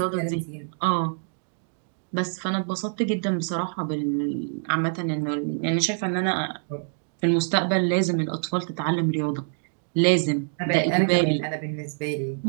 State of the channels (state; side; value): silent; left; digital silence